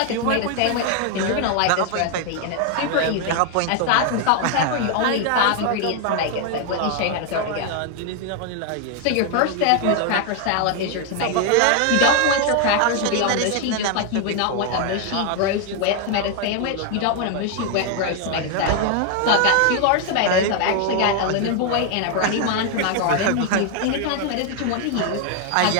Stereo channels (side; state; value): both; different; correlation 0.00